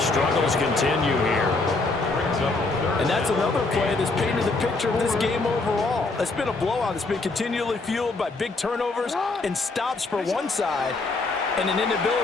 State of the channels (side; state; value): right; quieter; 3.5 dB